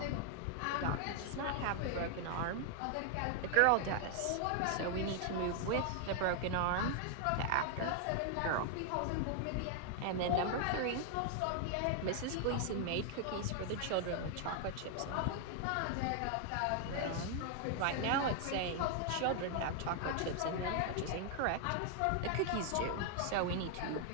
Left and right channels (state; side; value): different; both; correlation 0.00